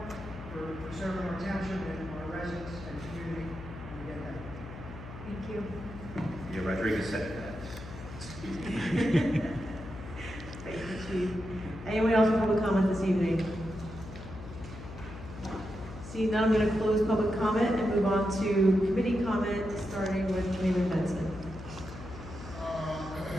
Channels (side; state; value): left; noise; hum, 12 dB below the sound